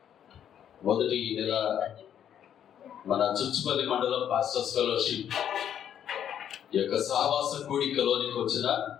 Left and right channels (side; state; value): right; quieter; 9.6 dB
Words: మొదటి నెల మన చుచ్చుపల్లి మండలం పాస్టర్స్ ఫెలోషిప్ ఈ యొక్క సహవాస కూడికలోనికి వచ్చిన